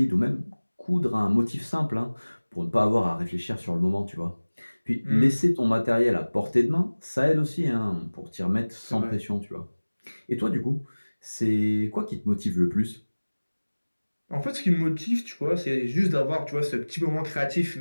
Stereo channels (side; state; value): both; inverted; correlation -1.00